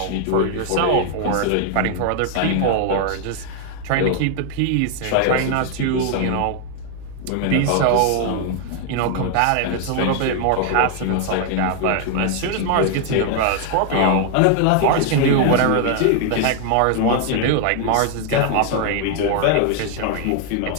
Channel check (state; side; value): different; both; correlation 0.00